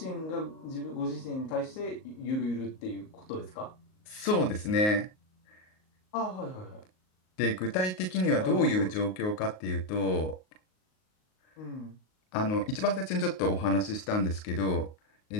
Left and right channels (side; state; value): right; late; 38 ms